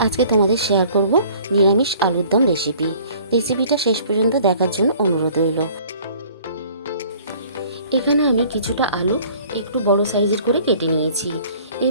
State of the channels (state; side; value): inverted; both; correlation -0.52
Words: আজকে তোমাদের শেয়ার করব নিরামিষ আলুর দম রেসিপি। রেসিপিটা শেষ পর্যন্ত দেখার জন্য অনুরোধ রইল। এখানে আমি কিছুটা আলু একটু বড় সাইজের করে কেটে নিয়েছি।